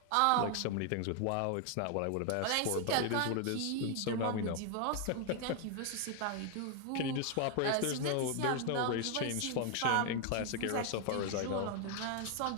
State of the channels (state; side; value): different; both; correlation 0.00